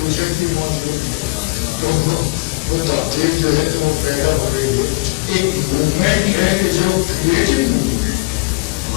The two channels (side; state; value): right; quieter; 26.3 dB